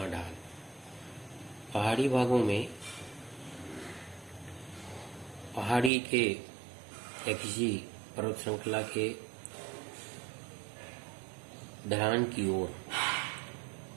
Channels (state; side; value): drops out; left; at 5.9 s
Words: ढाल। पहाड़ी भागों में पहाड़ी के या किसी पर्वत श्रृंखला के ढलान की ओर